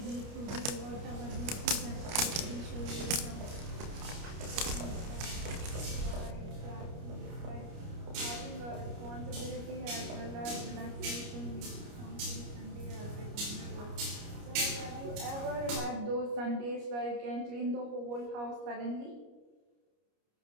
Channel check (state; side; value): late; left; 29 ms